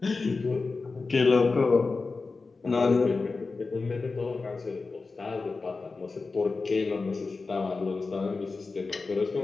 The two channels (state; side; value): quieter; right; 4.1 dB